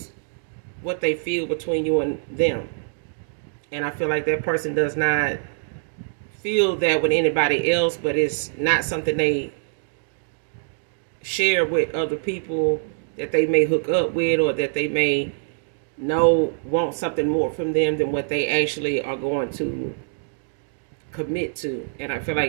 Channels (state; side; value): silent; left; digital silence